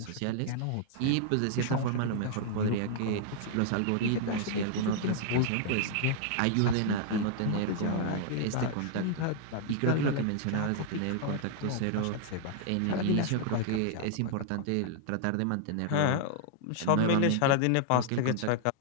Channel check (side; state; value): both; different; correlation -0.01